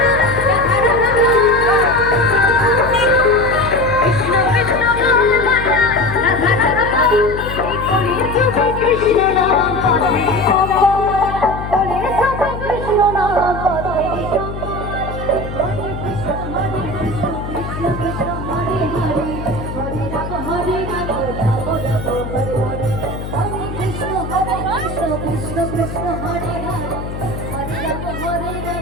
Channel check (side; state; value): left; noise; hum, 8 dB below the sound